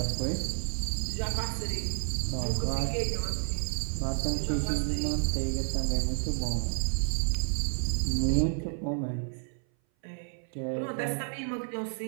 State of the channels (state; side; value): silent; left; 57 dB below the other